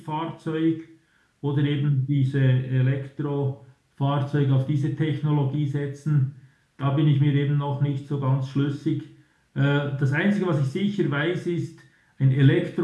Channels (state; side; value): identical; both; correlation 1.00